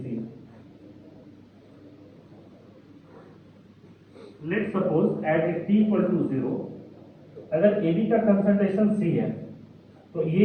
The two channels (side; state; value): both; identical; correlation 1.00